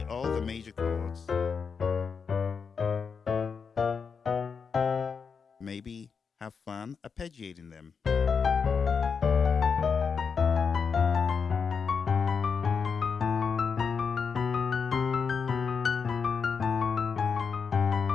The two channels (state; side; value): quieter; right; 5.8 dB